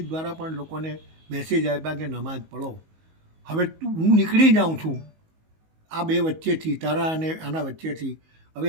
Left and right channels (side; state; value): left; late; 19 ms